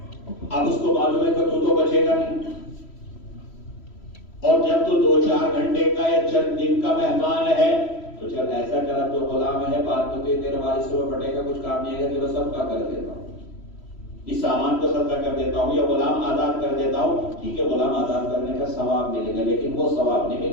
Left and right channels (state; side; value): late; right; 3.1 ms